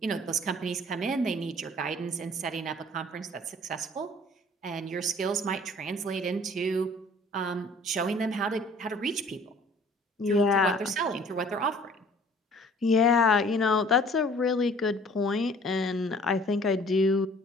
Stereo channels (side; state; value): both; normal; correlation 0.52